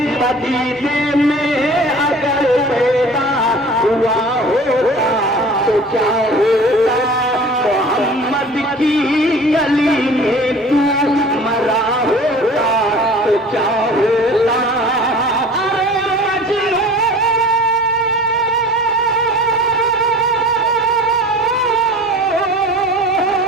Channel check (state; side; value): normal; both; correlation 0.43